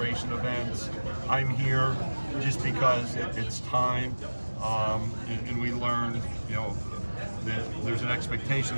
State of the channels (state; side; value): inverted; both; correlation -1.00